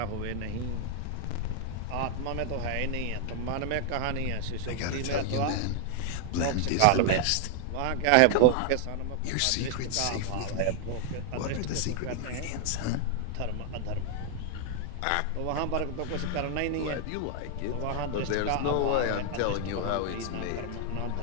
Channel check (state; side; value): different; both; correlation 0.00